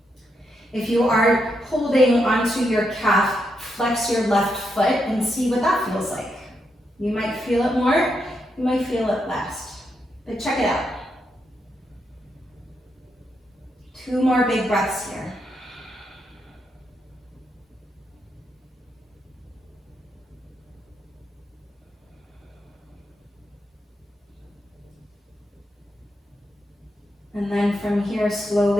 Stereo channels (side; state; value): both; normal; correlation 0.82